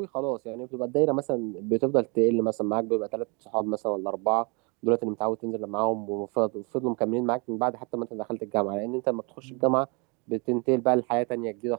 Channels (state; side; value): quieter; left; 31.5 dB